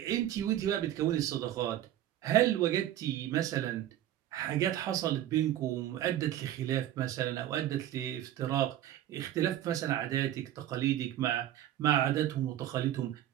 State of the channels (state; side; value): quieter; left; 12.4 dB